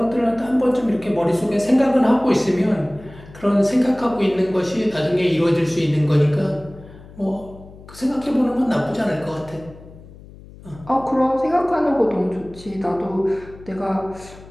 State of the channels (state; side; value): noise; left; hum, 19 dB below the sound